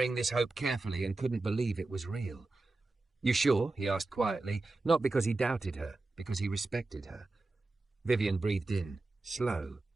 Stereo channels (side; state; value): left; quieter; 3.3 dB